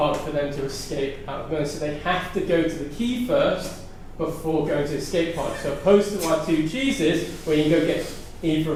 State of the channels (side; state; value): both; identical; correlation 1.00